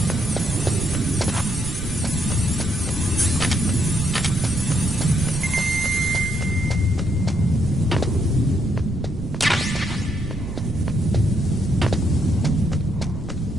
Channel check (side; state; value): right; noise; rumble, 10 dB below the sound